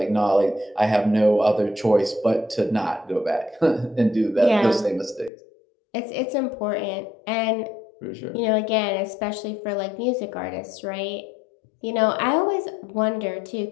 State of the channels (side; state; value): right; drops out; at 5.3 s